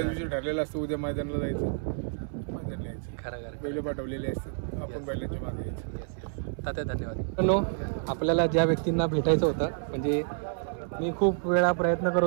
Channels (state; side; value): silent; left; 58 dB below the other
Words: दिवशी ठरलेलं असतं उद्या मैदानाला जायचं, मैदानाला यायचं. खरं बैल पाठवलेले असतात आपण बैलांच्या मागे यायचं. तात्या धन्यवाद. आपल्याला ज्या व्यक्तींना भेटायचं होतं म्हणजे मी खूप वेळा प्रयत्न